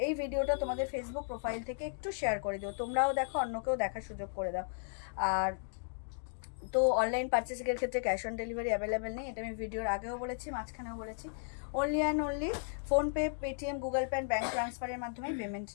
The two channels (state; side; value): silent; right; digital silence